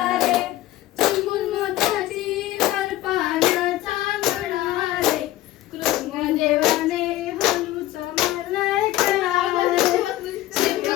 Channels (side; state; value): right; quieter; 15.3 dB